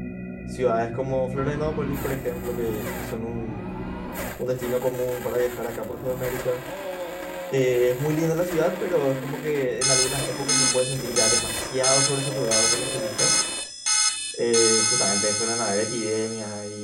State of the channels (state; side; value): identical; both; correlation 1.00